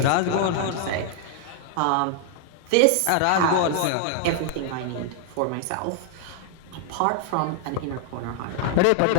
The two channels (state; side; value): different; both; correlation 0.00